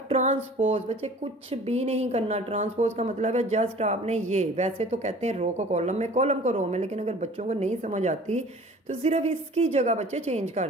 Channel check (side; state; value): both; normal; correlation 0.47